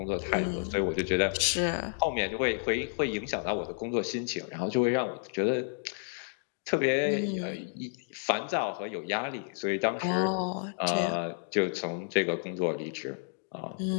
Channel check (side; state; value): right; silent; digital silence